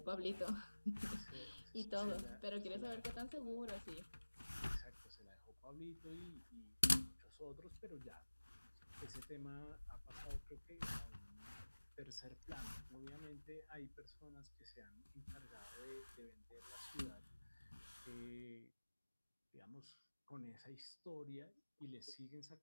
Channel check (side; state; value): both; inverted; correlation -1.00